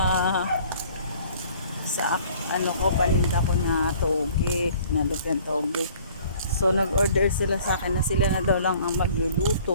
ko, paninda ko na toge, nalupyan toge. So nag-order sila sa akin na sila na daw lang ang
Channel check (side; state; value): both; inverted; correlation -0.53